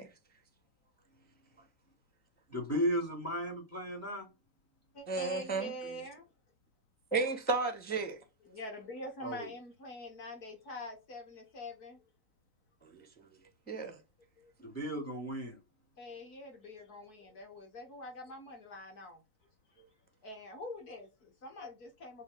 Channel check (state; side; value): late; right; 3.9 ms